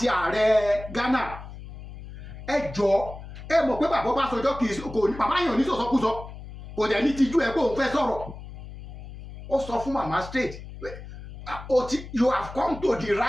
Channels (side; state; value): left; noise; hum, 13 dB below the sound